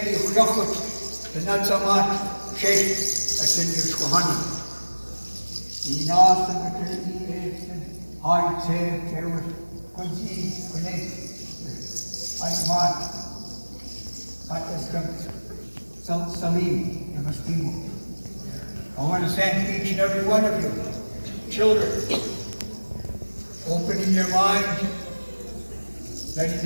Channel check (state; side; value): inverted; both; correlation -1.00